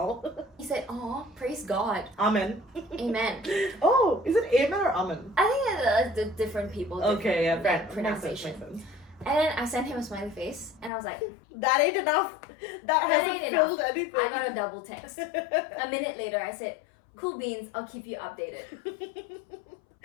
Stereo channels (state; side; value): drops out; right; at 10.9 s